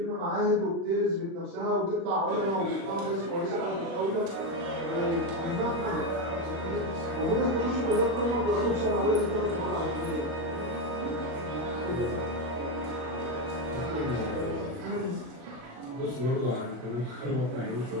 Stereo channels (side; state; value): left; late; 36 ms